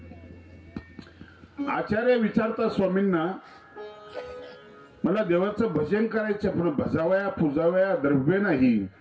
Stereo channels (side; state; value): both; identical; correlation 1.00